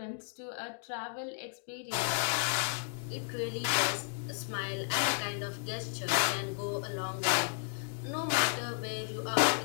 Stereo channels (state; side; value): silent; right; digital silence